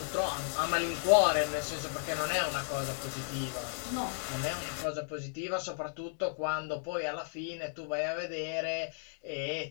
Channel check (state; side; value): silent; right; digital silence